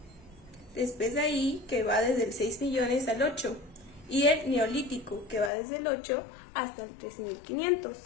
Después de ahí, que va desde el 6 millones al 8, y el Neolítico, que va desde el 8 hasta el 3500.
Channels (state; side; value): drops out; right; at 5.5 s